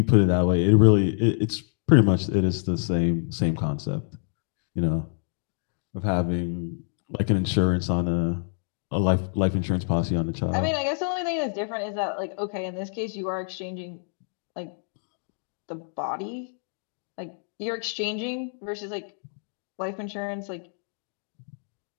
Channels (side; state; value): right; silent; digital silence